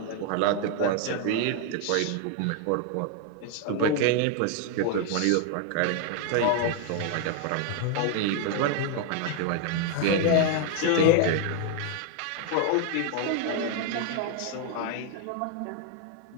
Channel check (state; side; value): different; both; correlation 0.01